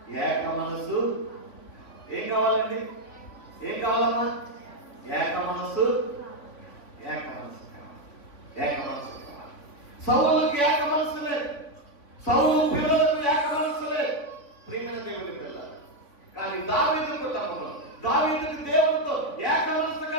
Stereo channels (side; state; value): right; late; 3.6 ms